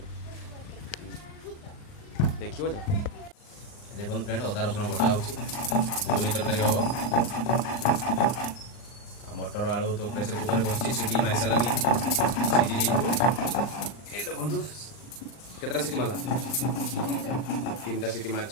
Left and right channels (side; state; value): right; late; 39 ms